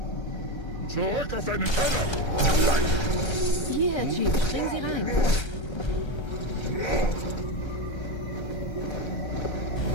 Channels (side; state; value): right; late; 1.3 ms